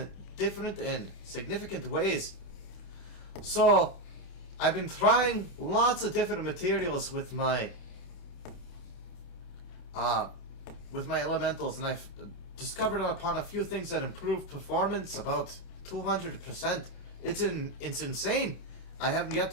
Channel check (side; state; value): right; late; 28 ms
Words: different and significant ways. So, I've been trying lots of different materials with my elementals, and I've discovered upon a few things that improve performance about 200%. It's insane. I haven't yet